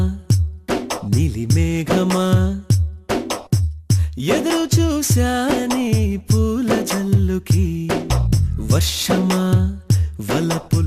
నీలి మేఘమా ఎదురు చూశాని పూల జల్లుకి వర్షమా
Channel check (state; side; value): identical; both; correlation 1.00